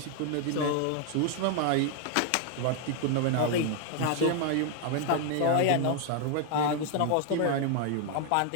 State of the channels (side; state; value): both; different; correlation 0.00